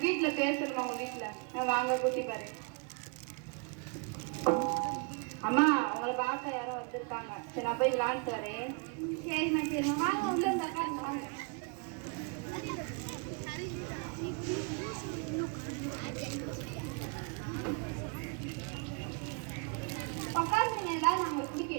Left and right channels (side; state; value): left; quieter; 33.0 dB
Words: பேசணுமா? உங்க வீட்டுல வாங்க கூட்டி பாரு. அம்மா உங்களை பார்க்க யாரோ வந்திருக்காங்க. சரி நான் போய் விளையாண்டு வரேன். சரிம்மா சரிம்மா வாங்க உள்ள இந்த உட்காருங்க வாங்க. உட்காருங்க, ஏதாவது நான் உங்களுக்கு பிடி